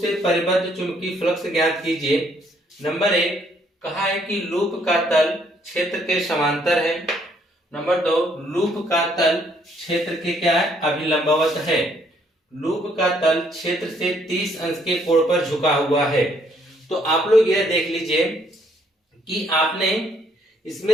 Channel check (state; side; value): normal; both; correlation 0.68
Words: से परिबद्ध चुंबकीय फ्लक्स ज्ञात कीजिए। नंबर 1 कहा है कि लूप का तल क्षेत्र के समांतर है। नंबर 2 लूप का तल क्षेत्र के क्या है? अभिलंबवत है। लूप का तल क्षेत्र से 30 अंश के कोण पर झुका हुआ है। तो आप लोग यह देख लीजिए कि आपने